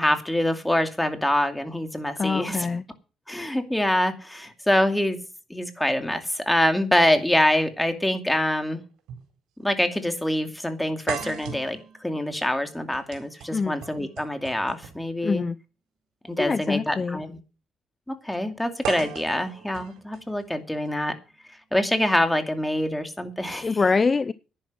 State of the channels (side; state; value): both; normal; correlation 0.94